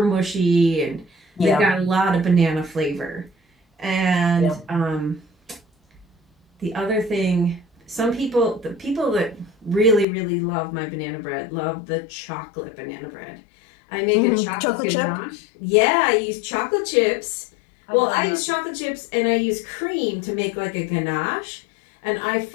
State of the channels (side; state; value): right; drops out; at 10.1 s